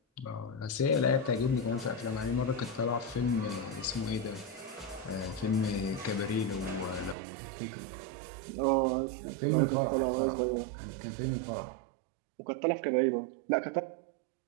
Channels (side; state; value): left; drops out; at 7.2 s